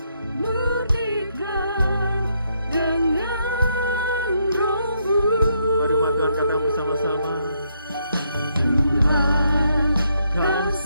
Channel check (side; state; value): both; inverted; correlation -0.76